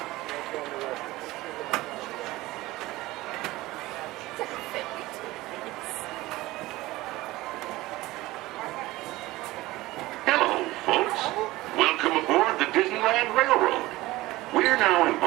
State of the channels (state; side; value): quieter; left; 18.6 dB